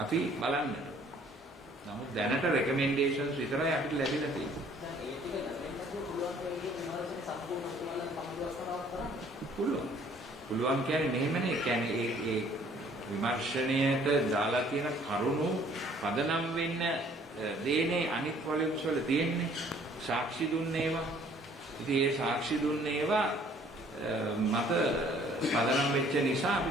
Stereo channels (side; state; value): both; normal; correlation 0.58